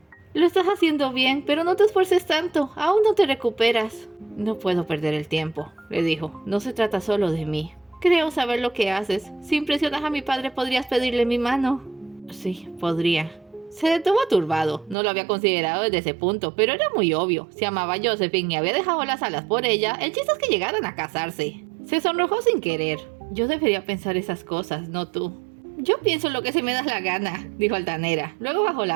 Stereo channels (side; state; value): left; drops out; at 15.0 s